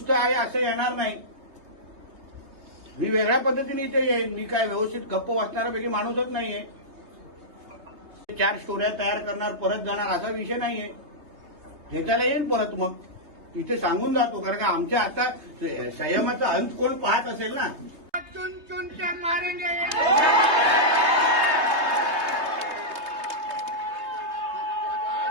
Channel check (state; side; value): late; left; 3.2 ms